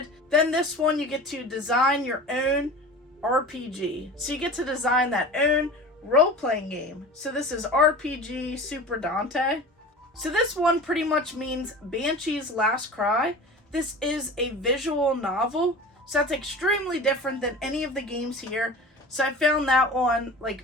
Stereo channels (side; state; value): both; normal; correlation 0.36